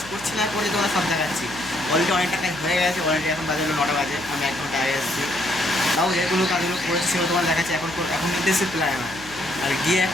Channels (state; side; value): noise; left; hum, 21 dB below the sound